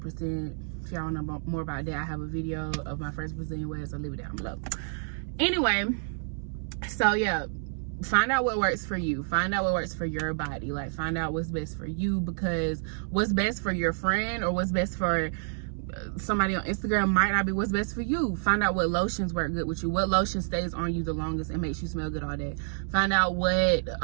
If y'all want to know more about that, I have a video of my first Brazilian wax. I'll leave it down below. Anyway, so yeah, find out what works for you. Find out what works for your body. Like, find out what's best for you, because what's best for your friend or what's best for somebody on Instagram might not be what's best for you. Find out what lotions work good with you, what lotion stays on you the longest and makes you smell good all day. Find out what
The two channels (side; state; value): left; silent; 59 dB below the other